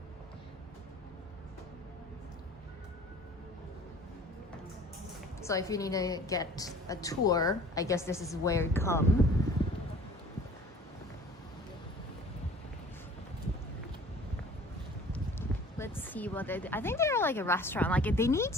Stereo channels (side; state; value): both; normal; correlation 0.48